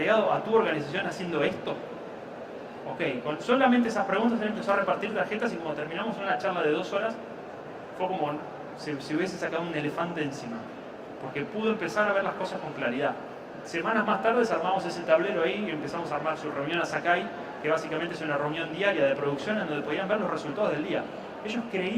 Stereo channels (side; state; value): both; identical; correlation 1.00